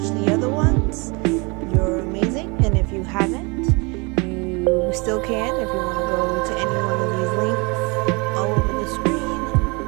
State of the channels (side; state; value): left; quieter; 28.9 dB